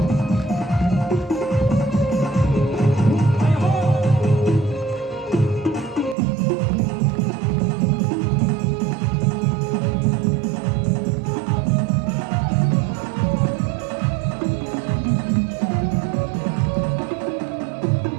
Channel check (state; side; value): drops out; left; at 6.2 s